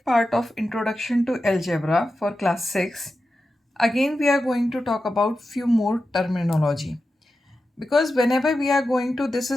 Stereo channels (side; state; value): both; normal; correlation 0.91